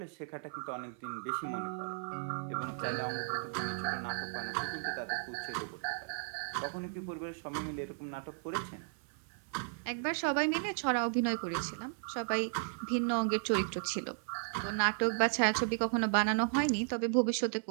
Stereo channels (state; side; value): silent; left; 54 dB below the other